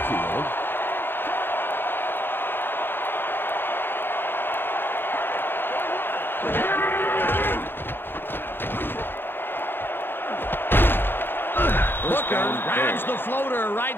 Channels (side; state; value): right; late; 0.10 ms